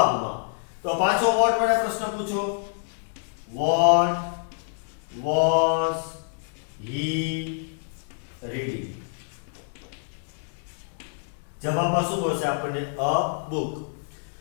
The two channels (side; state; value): right; silent; digital silence